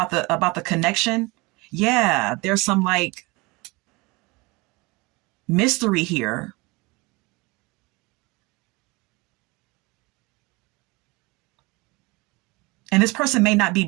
the connection. Yeah, there's some like mystery here. And this person may not be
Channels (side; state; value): left; quieter; 25.0 dB